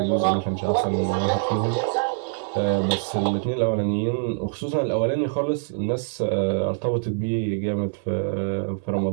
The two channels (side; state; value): left; silent; 62 dB below the other